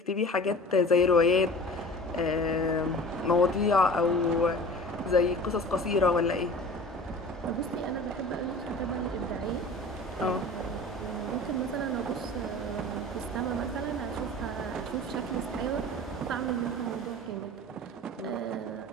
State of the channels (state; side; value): normal; both; correlation 0.40